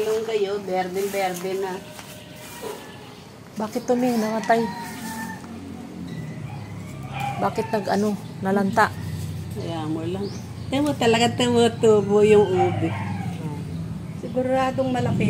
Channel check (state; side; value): identical; both; correlation 1.00